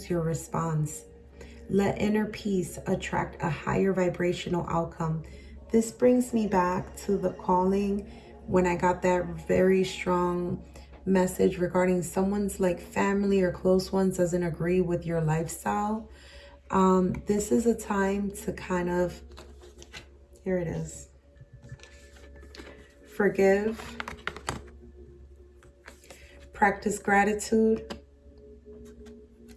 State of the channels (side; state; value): both; identical; correlation 1.00